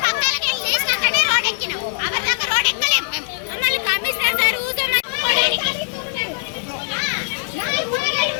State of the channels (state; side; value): silent; right; digital silence